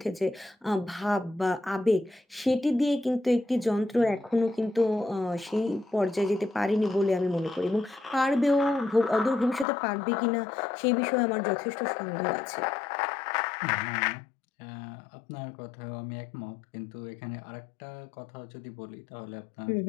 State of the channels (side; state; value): right; drops out; at 9.7 s